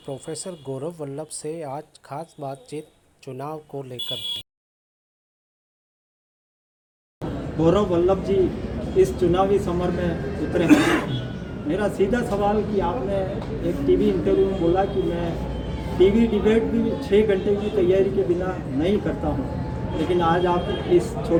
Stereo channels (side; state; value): both; identical; correlation 1.00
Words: गौरव वल्लभ से आज खास बातचीत चुनाव को लेकर। गौरव वल्लभ जी इस चुनावी समर में उतरे हैं। मेरा सीधा सवाल कि आपने एक टीवी इंटरव्यू में बोला कि मैं टीवी डिबेट भी 6 घंटे की तैयारी के बिना नहीं करता हूं, लेकिन आज आप इस